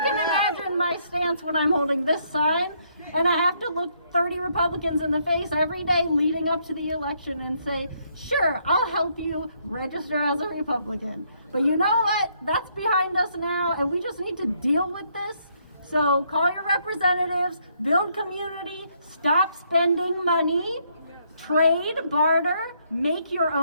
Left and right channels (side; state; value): both; inverted; correlation -0.71